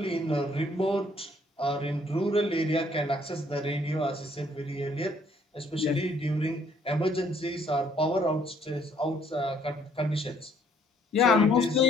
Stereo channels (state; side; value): normal; both; correlation 0.64